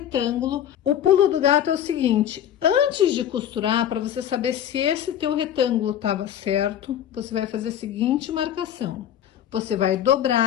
o pulo do gato é o seguinte: antes de costurar, para você saber se esse teu retângulo estava certo, você vai fazer a seguinte marcação. Você vai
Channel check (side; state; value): right; quieter; 10.5 dB